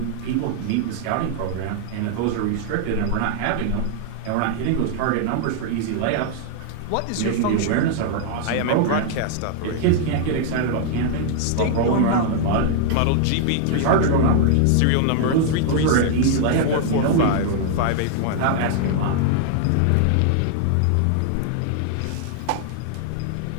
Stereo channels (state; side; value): different; both; correlation 0.00